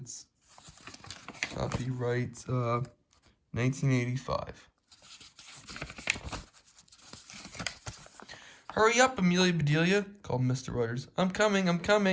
copyright 1985. Hurry up, Amelia Bedelia, called Mr. Rogers. I'm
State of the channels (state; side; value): identical; both; correlation 1.00